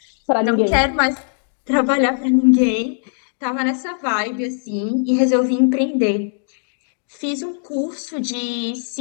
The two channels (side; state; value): right; silent; digital silence